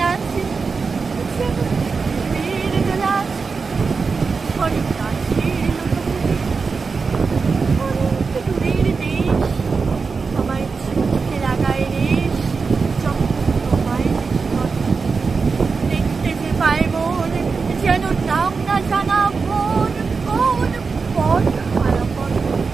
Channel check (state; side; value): quieter; left; 4.8 dB